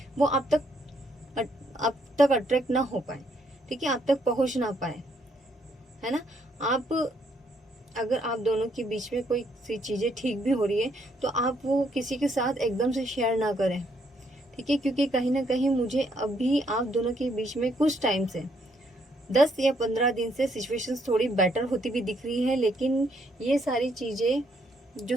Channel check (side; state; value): both; normal; correlation 0.72